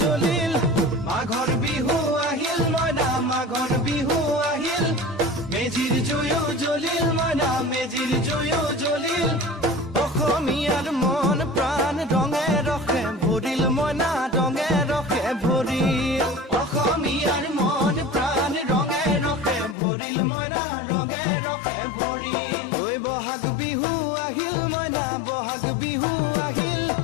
জ্বলিল মাঘৰ বিহু আহিল মইনা মাঘৰ বিহু আহিল মেজিৰ জুয়ো জ্বলিল মইনা মেজিৰ জুয়ো জ্বলিল অসমীয়াৰ মন প্ৰাণ ৰঙে ৰখে ভৰিল মইনা ৰঙে ৰখে ভৰিল অসমীয়াৰ মন প্ৰাণ ৰঙে ৰখে ভৰিল মইনা ৰঙে ৰখে ভৰিল ঐ বহাগ বিহু আহিল মইনা বহাগ বিহু আহিল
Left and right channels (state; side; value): drops out; right; at 19.8 s